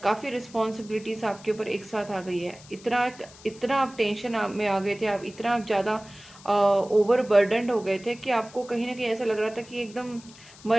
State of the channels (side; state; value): left; noise; hiss, 21 dB below the sound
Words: रिस्पॉन्सिबिलिटीज़ आपके ऊपर एक साथ आ गई है। इतना आप टेंशन में आ गए थे, आप इतना ज़्यादा ओवर बर्डनड हो गए थे कि आपको कहीं ना कहीं ऐसा लग रहा था कि एकदम